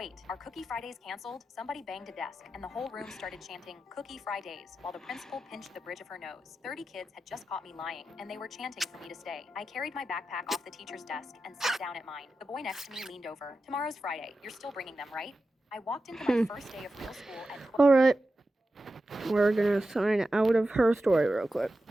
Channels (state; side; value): normal; both; correlation 0.91